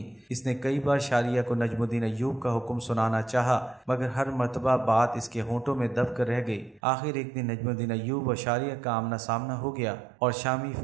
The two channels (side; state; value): left; drops out; at 6.8 s